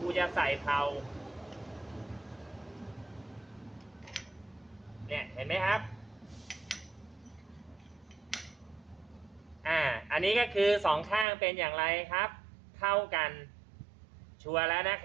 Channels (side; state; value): left; drops out; at 11.2 s